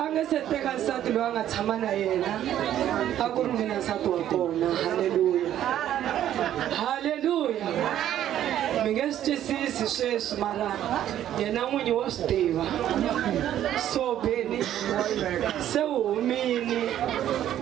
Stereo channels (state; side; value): quieter; left; 11.5 dB